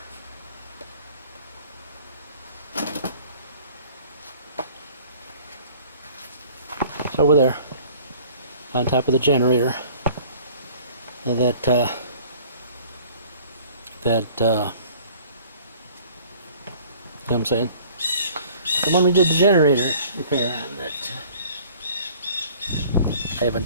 It's over there, on top of the generator. You know what I'm saying? The one we did the generator repair on that I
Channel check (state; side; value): inverted; both; correlation -0.51